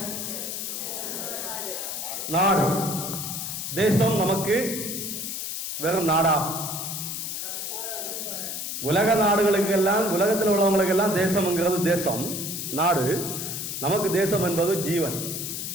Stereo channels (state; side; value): noise; left; hiss, 5 dB below the sound